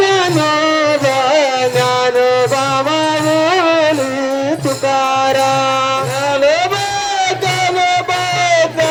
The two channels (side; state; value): both; identical; correlation 1.00